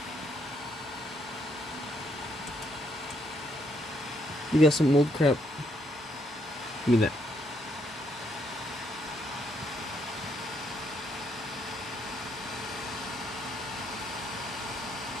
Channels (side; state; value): both; normal; correlation 0.73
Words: You got some old crap. Give me that.